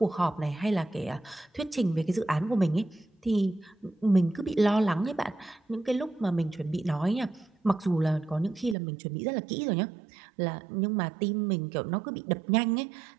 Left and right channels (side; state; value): left; drops out; at 8.8 s